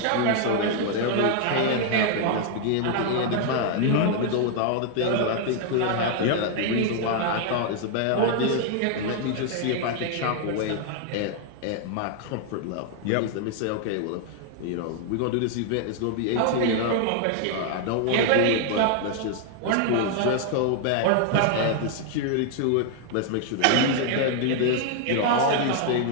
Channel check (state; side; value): different; both; correlation 0.00